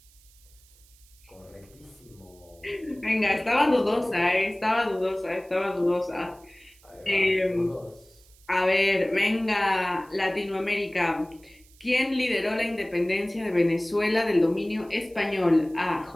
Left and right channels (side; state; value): right; noise; hiss, 28 dB below the sound